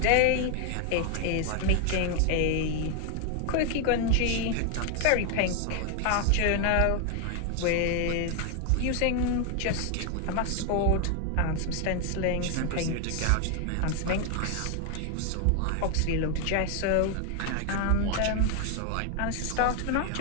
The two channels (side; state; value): both; different; correlation 0.01